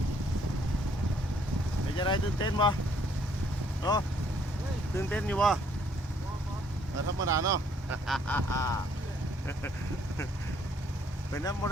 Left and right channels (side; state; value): both; normal; correlation 0.65